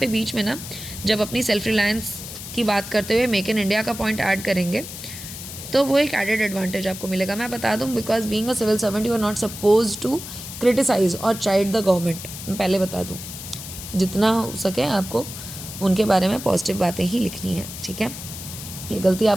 बीच में ना जब अपनी सेल्फ रिलायंस की बात करते हुए मेक इन इंडिया का पॉइंट ऐड करेंगे तो वो एक एडेड एडवांटेज आपको मिलेगा। मैं बता दूँ, because being a civil servant you are not suppose to criticise और चाइड द गवर्नमेंट। मैं पहले बता दूँ, जितना हो सके आपको उनके बारे में पॉजिटिव बातें ही लिखनी है, ठीक है। ये गलती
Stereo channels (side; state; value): left; noise; hiss, 11 dB below the sound